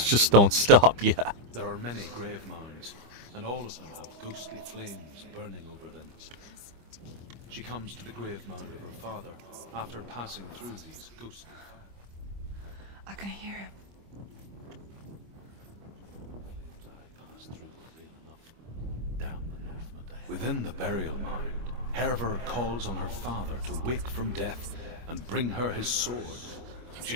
just don't stop, yeah. There are many grave mounds, and all of them have ghostly flames burning over them. She comes to the grave mound of her father after passing through these ghostly fires. I can hear him. Within the burial mound, Herver calls on her father to wake from death and bring her his sword.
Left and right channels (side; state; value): left; late; 25 ms